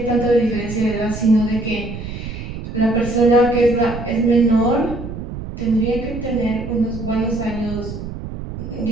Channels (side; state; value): right; noise; rumble, 9 dB below the sound